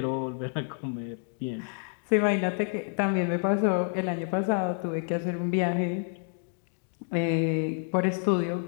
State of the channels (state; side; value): silent; right; 59 dB below the other